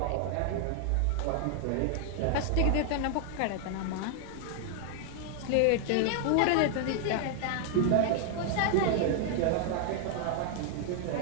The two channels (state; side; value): different; both; correlation 0.00